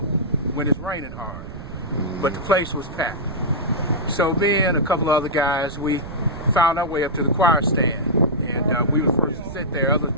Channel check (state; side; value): noise; right; rumble, 12 dB below the sound